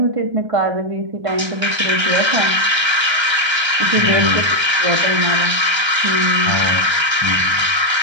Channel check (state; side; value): late; left; 1.3 ms